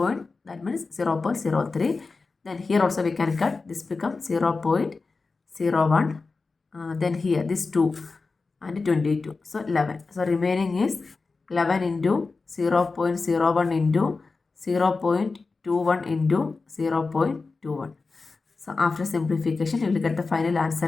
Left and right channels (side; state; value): right; quieter; 4.1 dB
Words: that means 0.03. Then here also we can cut, this becomes 0.01. Then here this 2 and 22, so 11. So remaining is 11 into 0.01 into 0.21 into 0.21. So after simplification you will get the final